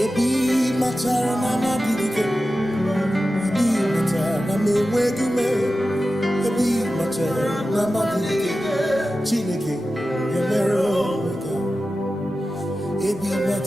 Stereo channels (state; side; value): normal; both; correlation 0.93